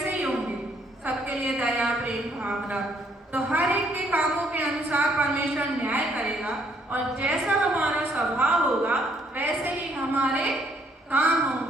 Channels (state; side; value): normal; both; correlation 0.67